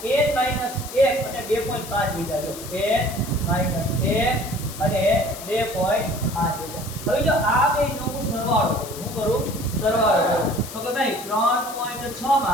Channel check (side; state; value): left; noise; hiss, 12 dB below the sound